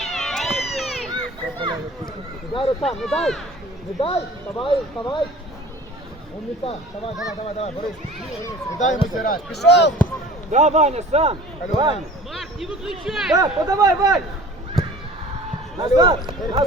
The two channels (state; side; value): normal; both; correlation 0.44